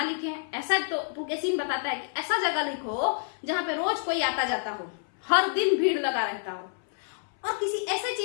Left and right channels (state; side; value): silent; right; 59 dB below the other